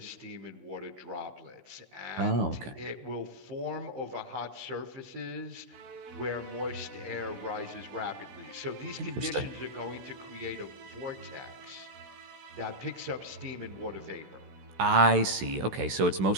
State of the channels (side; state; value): left; late; 16 ms